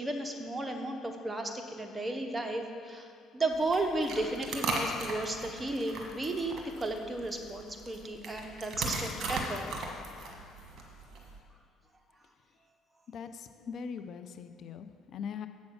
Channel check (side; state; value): both; normal; correlation 0.74